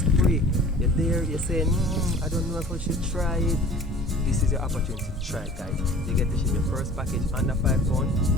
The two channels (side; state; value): both; normal; correlation 0.45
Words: You're there, you're saying, I don't know if I should try it. This is your opportunity to try it, guys. You get to ship your first package under £5,